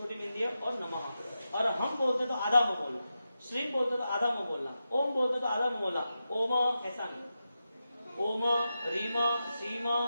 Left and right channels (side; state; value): both; inverted; correlation -0.90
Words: बिंदी है, और नमः। अरहम बोलते तो आधा मुंह बोलना, श्रीम बोलते तो आधा मुंह बोलना, ओम बोलते तो आधा मुंह बोलना, ओम ऐसा नहीं, ओम रीम श्रीम